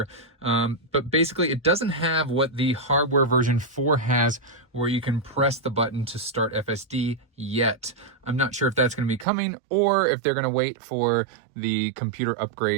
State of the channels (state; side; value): drops out; left; at 9.2 s